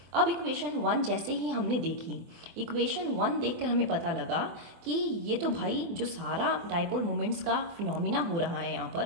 अब इक्वेशन 1 जैसे ही हमने देखी, इक्वेशन 1 देखकर हमें पता लगा कि ये तो भाई जो सारा डाइपोल मोमेंट्स का फिनोमिना हो रहा है यहाँ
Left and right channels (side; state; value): left; late; 24 ms